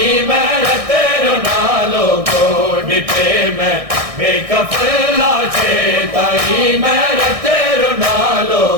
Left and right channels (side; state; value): left; late; 1.6 ms